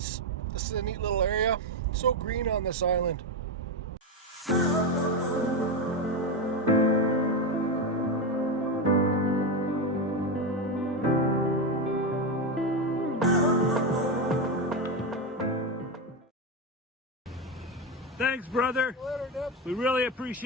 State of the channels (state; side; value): normal; both; correlation 0.12